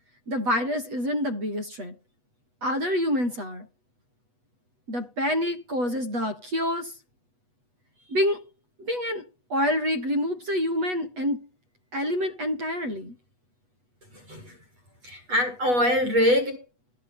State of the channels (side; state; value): left; late; 8.2 ms